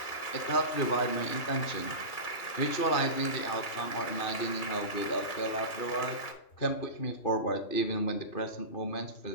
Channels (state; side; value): late; right; 2.4 ms